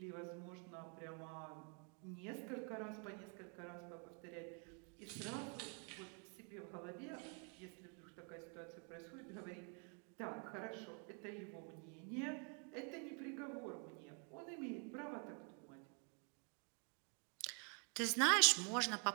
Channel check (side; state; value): left; quieter; 38.7 dB